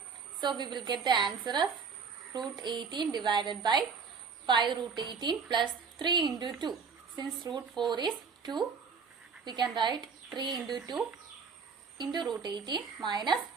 So we will get the answer as root 18 divided by 5 root 18 plus 3 into 2. Since root 4 is 2, we can write 3 into 2 into root 18 minus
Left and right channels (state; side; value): quieter; left; 5.6 dB